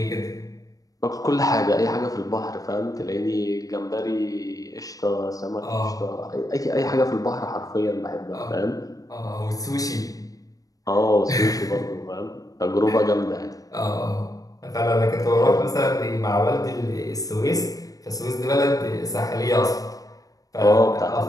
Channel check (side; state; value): right; late; 0.17 ms